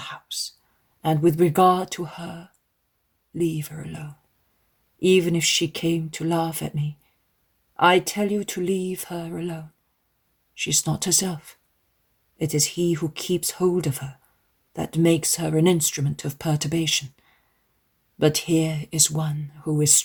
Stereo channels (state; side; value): identical; both; correlation 1.00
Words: and with regard to her, leave her alone. Even if she came to laugh at me, I tell you to leave her alone. She's not herself. It is he who keeps hold of her that makes her an instrument of perturbation. But here is one who is